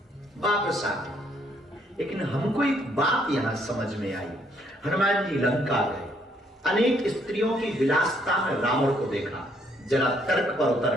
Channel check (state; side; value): normal; both; correlation 0.69